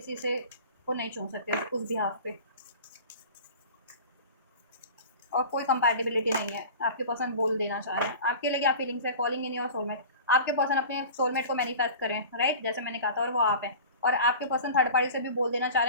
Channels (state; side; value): inverted; both; correlation -0.38